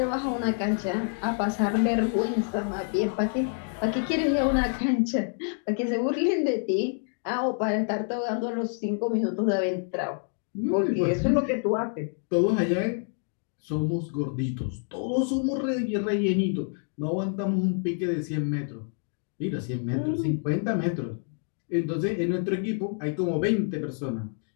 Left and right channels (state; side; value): silent; right; 60 dB below the other